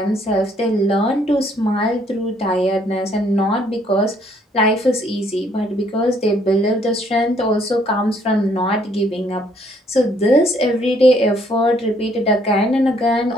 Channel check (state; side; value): normal; both; correlation 0.66